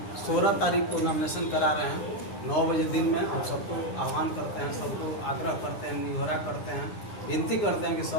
16 तारीख को नॉमिनेशन करा रहे हैं 9 बजे दिन में। हम सबको आह्वान करते हैं, सबको आग्रह करते हैं, निहोरा करते हैं, विनती करते हैं कि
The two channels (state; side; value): late; right; 9.8 ms